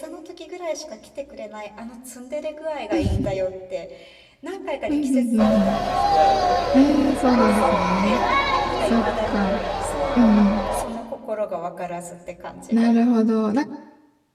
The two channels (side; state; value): both; identical; correlation 1.00